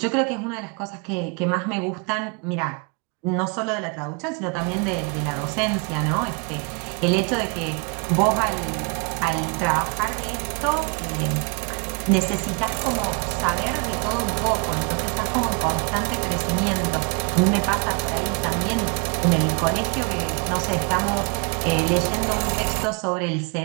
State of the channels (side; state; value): left; quieter; 34.4 dB